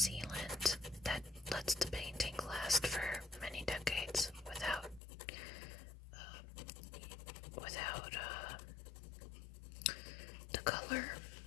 that lets the paint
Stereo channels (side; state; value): right; drops out; at 5.0 s